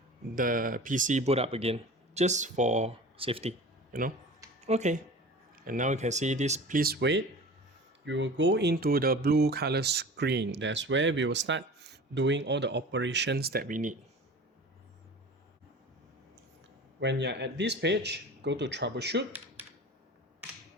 the PC boot up again, just for safety, Okay, and now you can see this, please wait. You will go into the blue color screen. That's where we will start doing all the operations that we need. When you're at this page, go to troubleshoot,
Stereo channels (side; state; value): both; normal; correlation 0.38